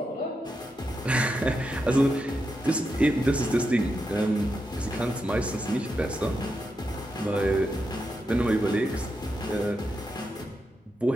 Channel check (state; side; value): normal; both; correlation 0.86